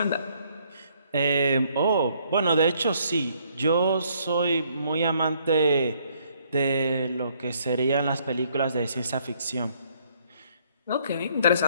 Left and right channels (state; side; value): inverted; both; correlation -0.66